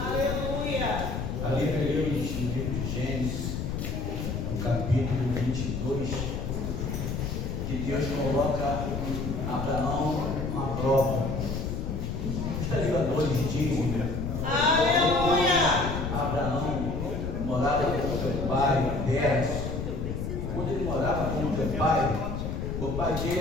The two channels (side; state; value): left; noise; rumble, 3 dB below the sound